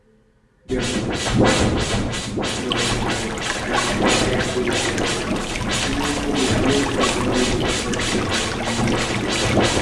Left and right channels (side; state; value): both; identical; correlation 1.00